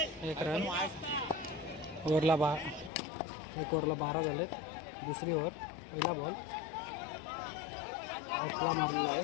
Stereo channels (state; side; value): drops out; right; at 2.9 s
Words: एक रन. ओव्हरला एक ओव्हरला 12 झालेत. दुसरी ओव्हर. पहिला बॉल ऑफला मारलेला आहे.